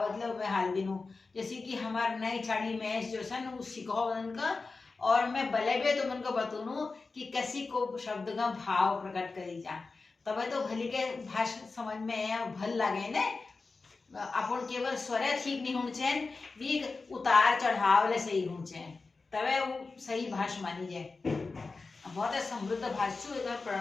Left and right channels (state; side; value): quieter; right; 4.0 dB